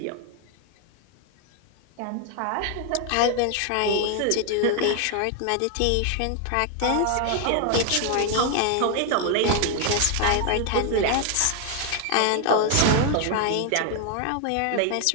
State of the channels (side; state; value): both; different; correlation 0.00